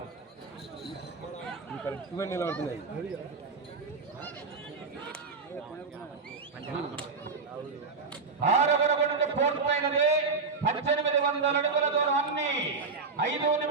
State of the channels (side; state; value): left; quieter; 4.5 dB